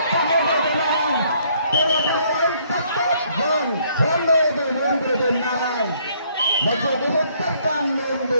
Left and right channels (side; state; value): both; inverted; correlation -0.66